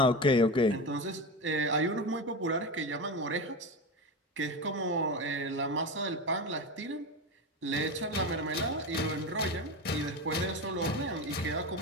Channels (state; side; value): normal; both; correlation 0.21